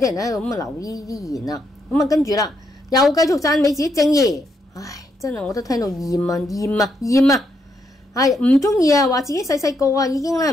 人喺度咁留呢啲言啦。跟住啦，又繼續讚美自己正義。真係我都聽到厭係唔中意話自己細個已經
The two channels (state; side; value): normal; both; correlation 0.77